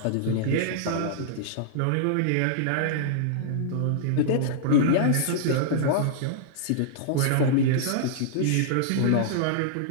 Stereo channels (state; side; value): different; both; correlation -0.01